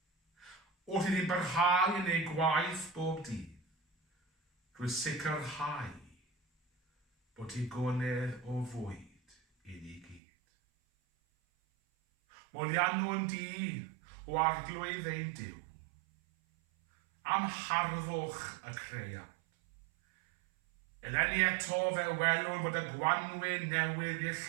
wrth iddi barhau yn ei gwaith bob dydd, drwy sicrhau bod hi gonedd o fwyd i ni gyd. Molianwn di o arglwydd ein Duw, am harddwch y creiad. Eleni eto fe welwn bod y gwanwyn newydd i'r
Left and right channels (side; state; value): left; drops out; at 10.2 s